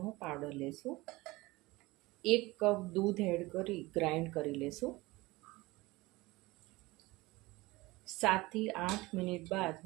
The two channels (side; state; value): left; quieter; 21.2 dB